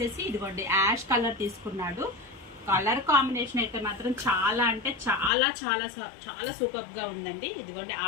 ఇదిగోండి యాష్ కలర్ తీసుకున్నాడు. కలర్ కాంబినేషన్ అయితే మాత్రం చాలా అంటే చాలా చాలా చాలా సూపర్ గా ఉందండి. ఇదిగోండి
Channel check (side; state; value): right; drops out; at 5.3 s